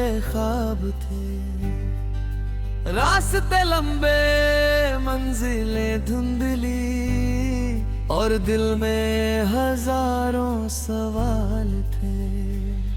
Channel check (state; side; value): identical; both; correlation 1.00